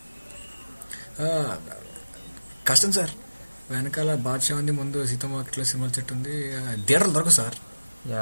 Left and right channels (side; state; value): both; inverted; correlation -0.99